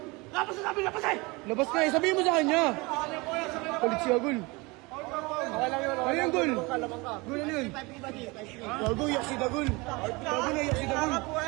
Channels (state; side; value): quieter; left; 25.3 dB